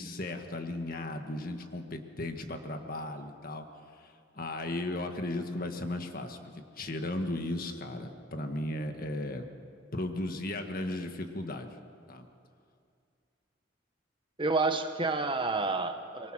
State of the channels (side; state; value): both; normal; correlation 0.41